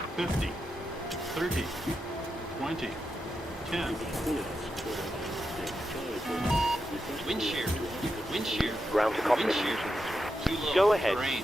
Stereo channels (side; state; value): both; normal; correlation 0.87